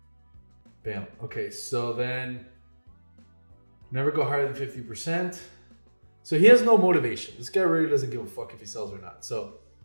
Bam. Okay, so then never go higher than 50%. So he has no motivation. This guy really doesn't give a fuck if he sells or not. So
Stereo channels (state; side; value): inverted; both; correlation -1.00